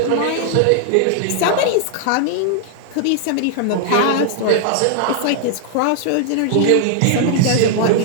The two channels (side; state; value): both; different; correlation 0.00